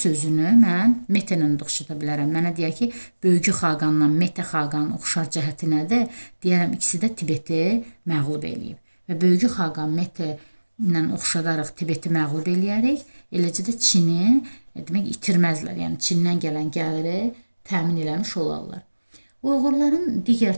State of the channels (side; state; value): both; inverted; correlation -1.00